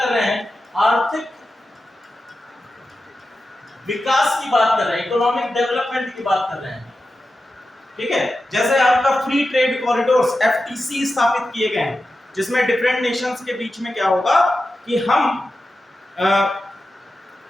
रहे हैं, आर्थिक विकास की बात कर रहे हैं, इकोनॉमिक डेवलपमेंट की बात कर रहे हैं। ठीक है, जैसे आपका फ्री ट्रेड कॉरिडोर्स एफटीसी स्थापित किए गए हैं, जिसमें डिफरेंट नेशंस के बीच में क्या होगा कि हम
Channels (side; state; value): both; normal; correlation 0.92